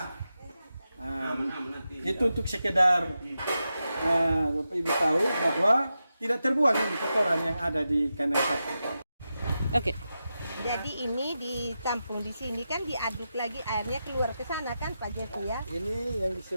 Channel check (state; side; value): inverted; both; correlation -0.90